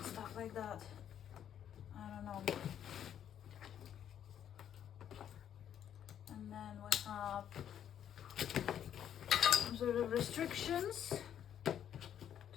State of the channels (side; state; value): right; quieter; 9.7 dB